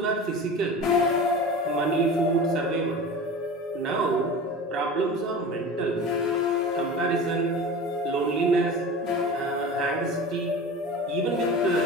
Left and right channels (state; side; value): normal; both; correlation 0.34